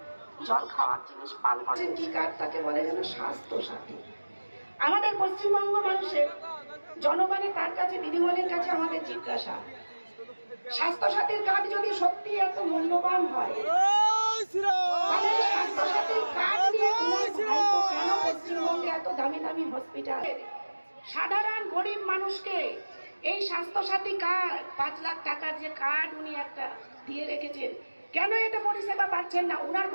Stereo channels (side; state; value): both; inverted; correlation -1.00